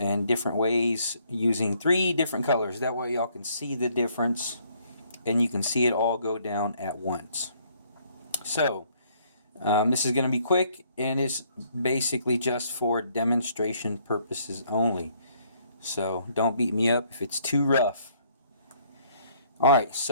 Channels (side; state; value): both; inverted; correlation -0.65